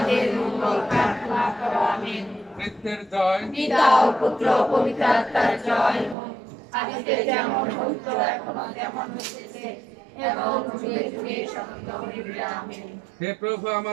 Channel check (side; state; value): left; drops out; at 6.2 s